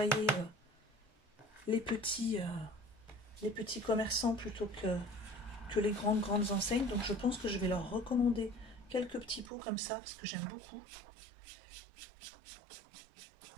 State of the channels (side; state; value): left; drops out; at 9.5 s